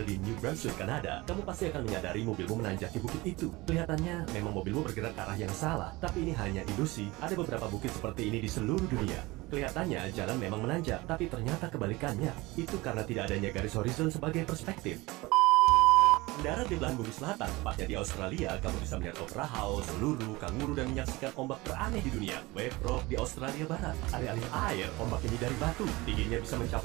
di New Brunswick, Kanada, kamu pasti akan menyadari mobilmu menanjaki bukit itu. Kelihatannya memang mobilmu bergerak ke arah yang salah, tapi ini hanya ilusi. Ada beberapa bukit seperti ini di seluruh dunia. Kelihatannya jalan memang menanjak, tapi ternyata kebalikannya. Itu karena tidak adanya garis horizon sebagai perspektif. Mendarat di belahan bumi selatan, tepatnya di Australia, kamu bisa melihat opera house, lulu, kanguru, dan menyaksikan ombak teraneh di dunia. Wave Rock di Australia Barat. Alih-alih air, ombak ini dari batu. Tingginya bisa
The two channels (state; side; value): quieter; left; 21.7 dB